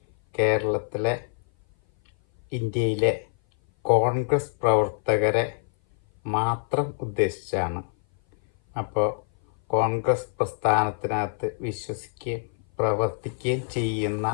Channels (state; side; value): silent; right; 57 dB below the other